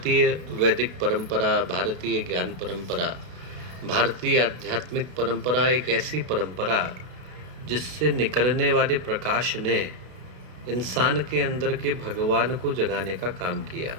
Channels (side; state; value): left; late; 32 ms